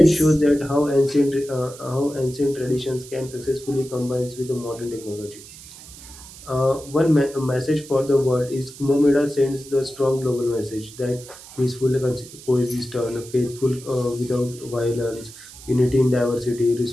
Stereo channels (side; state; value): right; noise; hiss, 17 dB below the sound